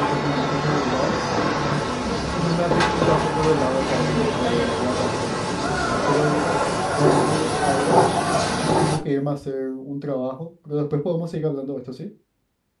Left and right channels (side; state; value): both; identical; correlation 1.00